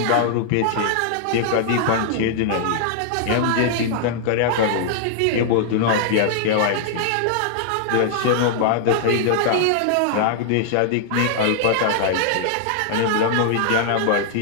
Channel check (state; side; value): different; both; correlation -0.01